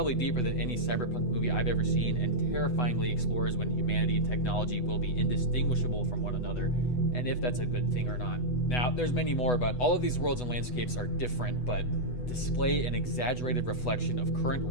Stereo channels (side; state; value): right; late; 8.1 ms